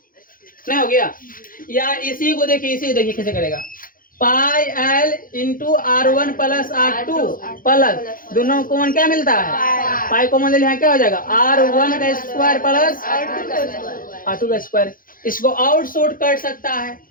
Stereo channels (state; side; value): late; right; 0.41 ms